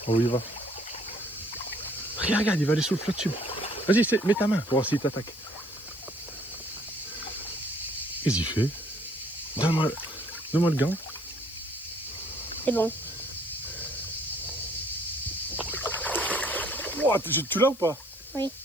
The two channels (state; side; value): noise; left; hiss, 19 dB below the sound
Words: Oh, il va. Regarde, il va aller sous le flat tube. Vas-y, mets ta main pour voir s'il t'attaque. Qu'est-ce qu'il fait? Donne-moi le gant. C'est bon. Wow, tu l'as ou pas? Oui.